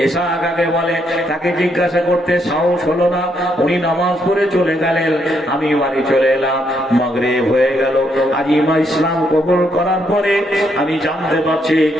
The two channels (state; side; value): normal; both; correlation 0.75